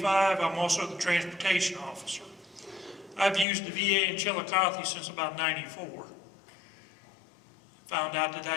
I'm also the transportation officer. I've used the VA in Chillicothe since about '94. Found out that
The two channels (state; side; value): drops out; right; at 3.5 s